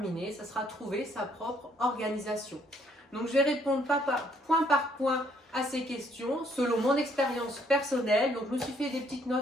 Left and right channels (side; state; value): both; normal; correlation 0.67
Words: ça sera trouver sa propre organisation. Donc je vais répondre point par point à ces questions selon mon expérience personnelle. Donc je me suis fait des petites